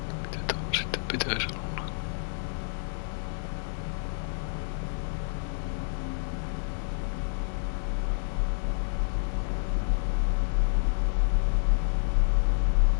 Mitä tuo sitten pitäisi olla?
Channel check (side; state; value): right; silent; digital silence